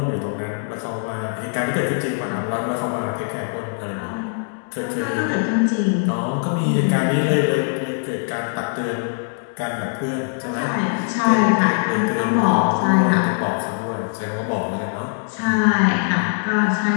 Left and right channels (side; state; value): right; silent; digital silence